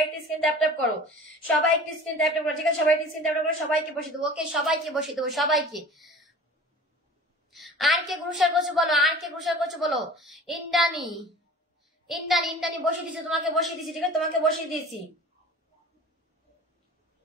একটু স্ক্রিন ট্যাপ করো, সবাই একটু স্ক্রিন ট্যাপ করো, ঠিক আছে? সবাই একটু স্ক্রিন ট্যাপ করো, সবাইকে বসিয়ে দেবো, ওকে? সবাইকে বসিয়ে দেবো, সবাইকে। আর কে গ্রুশার করছো বলো, ইন্দ্রাণী বসিয়ে দিয়েছি, তোমাকে বসিয়ে দিয়েছি, ঠিক আছে? তোমাকে বসিয়ে দিয়েছি।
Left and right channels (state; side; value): normal; both; correlation 0.42